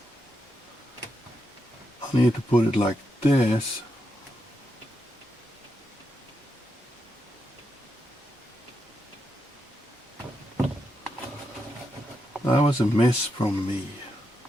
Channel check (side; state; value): both; normal; correlation 0.84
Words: I need to put it like this. That was a miss from me.